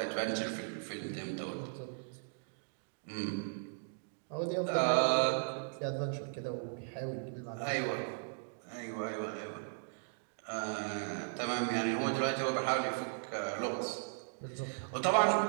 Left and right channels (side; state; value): left; silent; digital silence